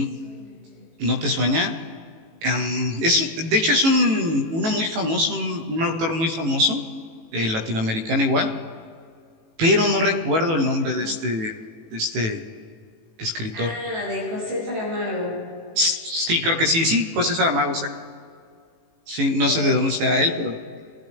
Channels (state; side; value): late; left; 18 ms